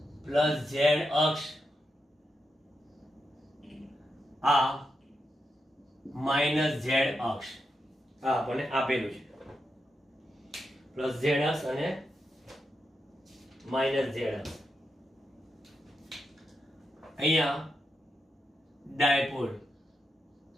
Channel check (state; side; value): normal; both; correlation 0.86